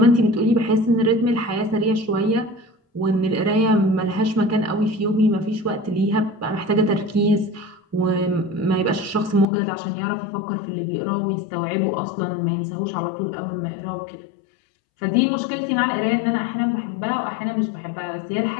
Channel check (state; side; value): drops out; right; at 9.5 s